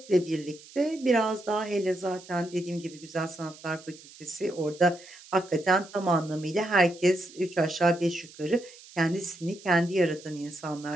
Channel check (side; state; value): right; noise; hiss, 20 dB below the sound